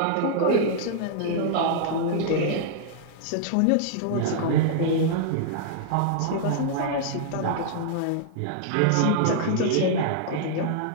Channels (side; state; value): both; different; correlation -0.01